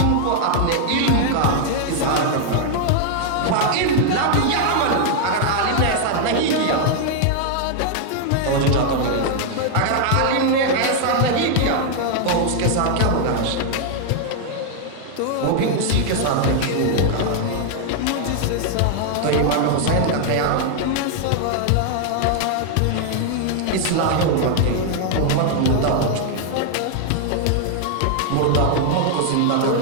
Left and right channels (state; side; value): different; both; correlation 0.00